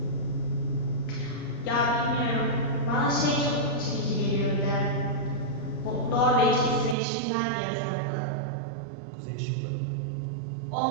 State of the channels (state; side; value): drops out; left; at 7.0 s